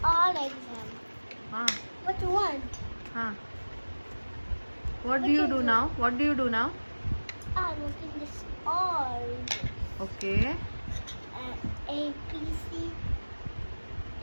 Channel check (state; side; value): inverted; both; correlation -1.00